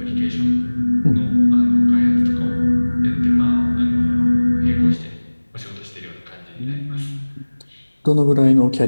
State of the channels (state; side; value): inverted; both; correlation -1.00